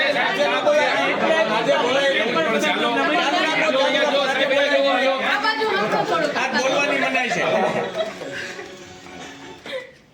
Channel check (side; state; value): both; identical; correlation 1.00